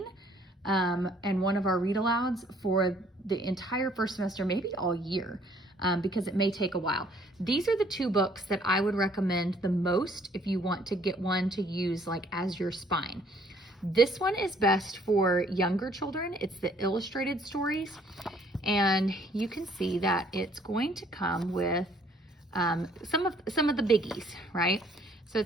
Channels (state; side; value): normal; both; correlation 0.61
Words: and one of our read alouds for the entire first semester, maybe all year, because it may take a while. These are the two books that I would recommend the most if you want to get one to use like as your spine. This one is best for younger children. It's the illustrated stories, and you can see that it's going to come with some of the biggies, right? So